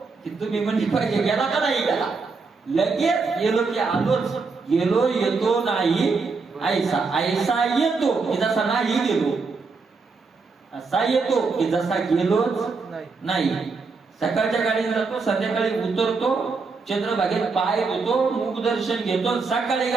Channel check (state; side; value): quieter; left; 4.4 dB